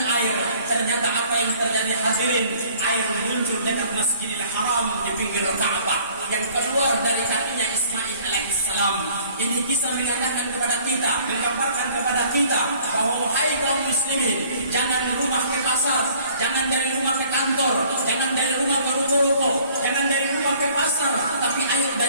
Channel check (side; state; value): both; inverted; correlation -0.55